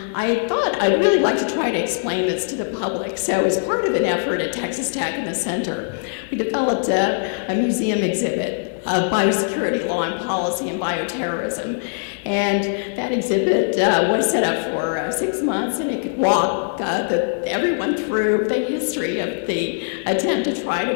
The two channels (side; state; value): right; silent; 65 dB below the other